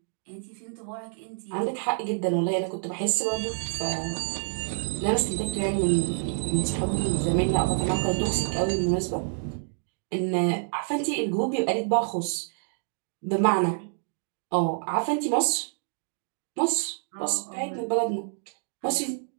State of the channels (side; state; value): left; silent; digital silence